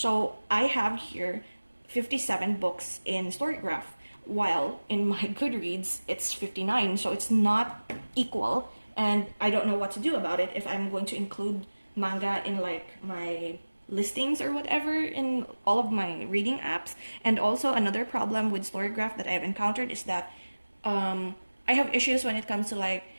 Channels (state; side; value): inverted; both; correlation -1.00